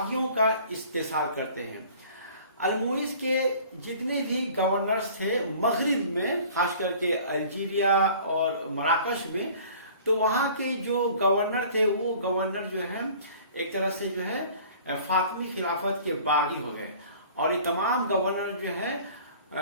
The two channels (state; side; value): inverted; both; correlation -0.48